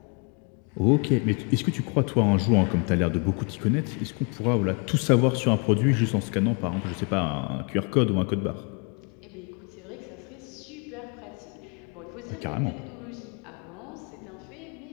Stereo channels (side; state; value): right; quieter; 34.9 dB